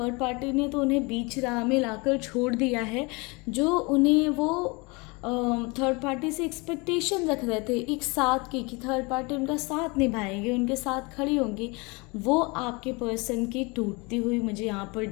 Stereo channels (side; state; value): right; quieter; 27.6 dB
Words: पार्टी ने तो उन्हें बीच राह में लाकर छोड़ दिया है। जो उन्हें वो थर्ड पार्टी से एक्सपेक्टेशन रख रहे थे एक साथ की, कि थर्ड पार्टी उनका साथ निभाएंगे, उनके साथ खड़ी होंगी, वो आपके पर्सन की टूटती हुई मुझे यहाँ पर